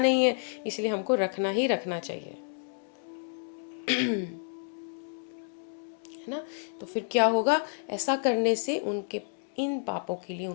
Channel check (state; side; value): silent; right; digital silence